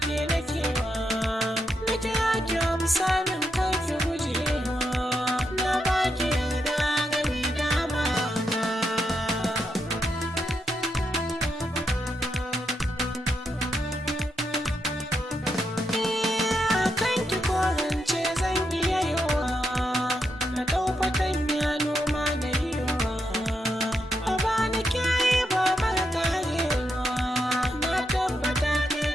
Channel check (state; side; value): normal; both; correlation 0.82